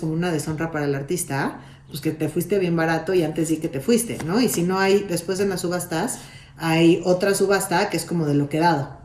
una deshonra para el artista, pues que te fuiste bien barato y antes sí que te fuiste, ¿no? Y si no hay, después en las subastas, hay otra subasta que es como de lo quedado.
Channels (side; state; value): both; identical; correlation 1.00